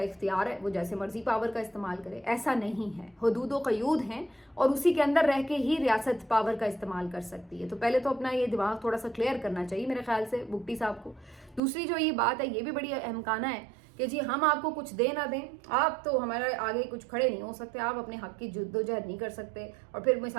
इख्तियार है, वो जैसे मर्जी पावर का इस्तेमाल करे। ऐसा नहीं है, हदूद व क़यूद हैं और उसी के अंदर रह के ही रियासत पावर का इस्तेमाल कर सकती है। तो पहले तो अपना ये दिमाग थोड़ा सा क्लियर करना चाहिए मेरे ख्याल से बुट्टी साहब को। दूसरी जो ये बात है ये भी बड़ी अहमकाना है कि जी हम आपको कुछ दे ना दें, आप तो हमारे आगे कुछ खड़े नहीं हो सकते, आप अपने हक की जद्दोजहद नहीं कर सकते। और फिर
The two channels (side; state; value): left; drops out; at 11.6 s